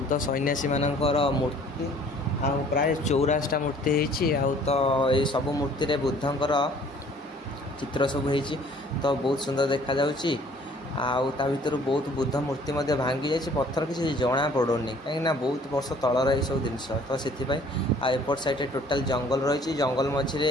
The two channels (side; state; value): both; normal; correlation 0.55